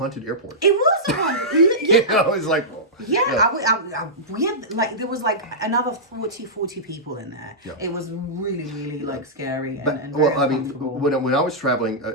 airport. It was a haunted. It's like. We had like there was like another 40 people in there. Yeah. It was really, really like scary and very uncomfortable. When I was traveling,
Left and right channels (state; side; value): normal; both; correlation -0.13